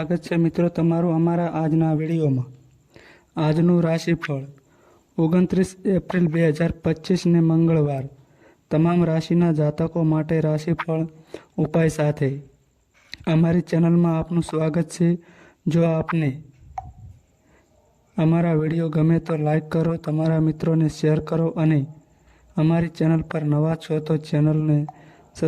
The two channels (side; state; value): both; identical; correlation 1.00